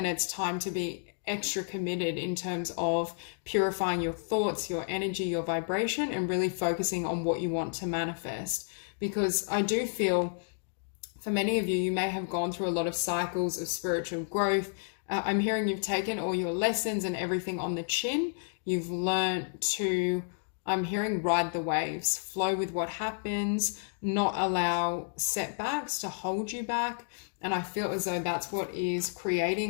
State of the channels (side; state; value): right; silent; digital silence